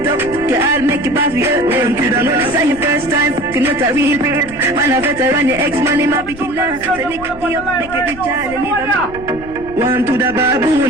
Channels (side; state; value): left; noise; rumble, 16 dB below the sound